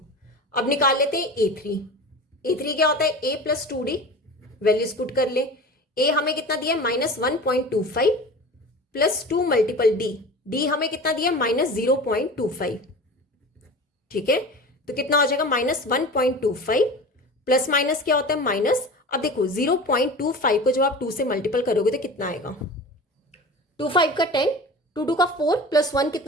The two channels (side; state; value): both; normal; correlation 0.35